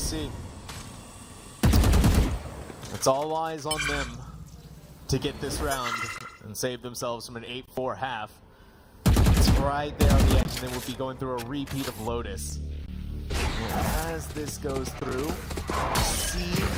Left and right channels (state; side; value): identical; both; correlation 1.00